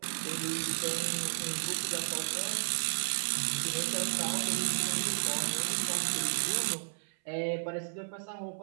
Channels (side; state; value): left; silent; 56 dB below the other